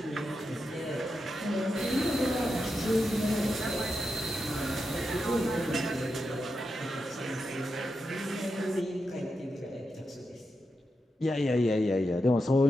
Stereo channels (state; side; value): normal; both; correlation 0.87